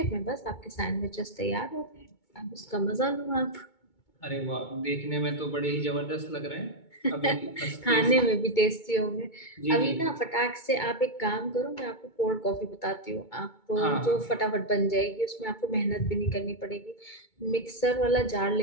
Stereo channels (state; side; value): late; right; 2.2 ms